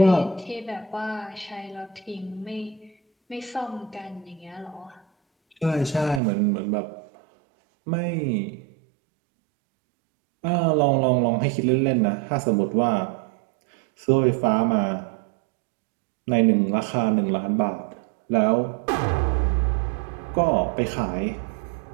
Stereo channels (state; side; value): drops out; left; at 6.2 s